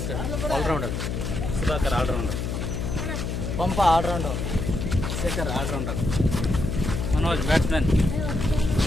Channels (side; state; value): left; noise; hum, 3 dB below the sound